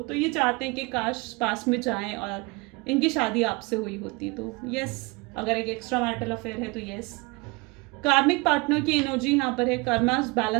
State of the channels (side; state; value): left; quieter; 26.1 dB